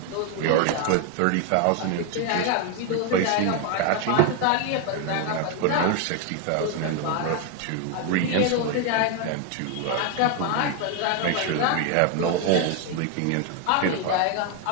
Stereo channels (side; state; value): both; different; correlation 0.01